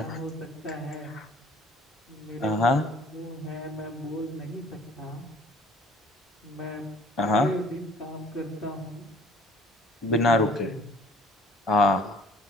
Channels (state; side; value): normal; both; correlation 0.55